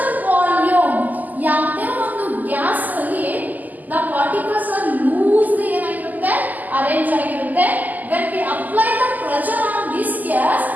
volume ಯಾವುದೇ ಒಂದು gas ಅಲ್ಲಿ the particles are loosely ಏನಾಗಿರುತ್ತೆ arrange ಆಗಿರುತ್ತೆ. when we apply the pressure on this gas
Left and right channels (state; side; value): late; left; 0.082 ms